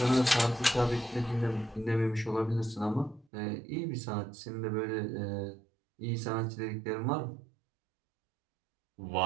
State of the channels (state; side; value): drops out; left; at 3.2 s